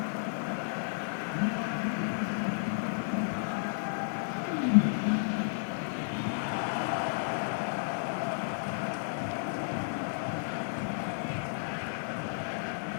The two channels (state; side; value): silent; right; digital silence